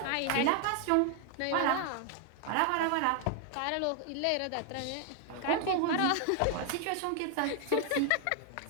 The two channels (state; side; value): different; both; correlation 0.00